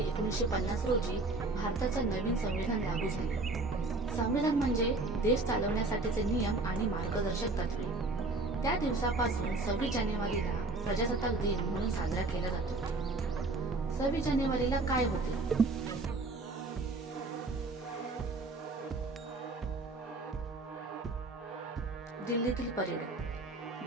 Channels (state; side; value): quieter; left; 3.3 dB